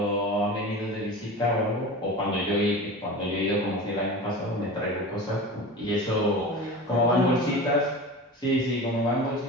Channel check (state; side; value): normal; both; correlation 0.32